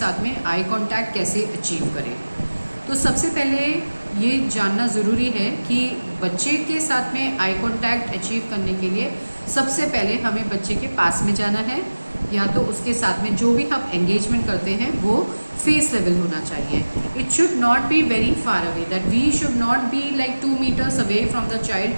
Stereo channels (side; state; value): both; inverted; correlation -1.00